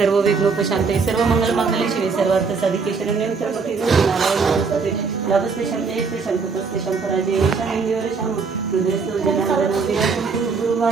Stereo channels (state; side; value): quieter; left; 5.0 dB